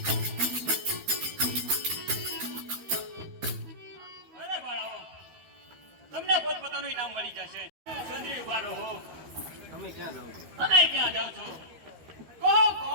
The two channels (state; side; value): late; left; 13 ms